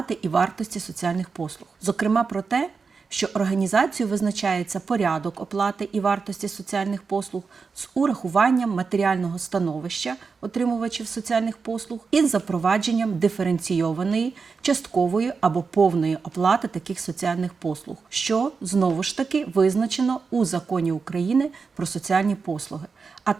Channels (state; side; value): quieter; left; 5.0 dB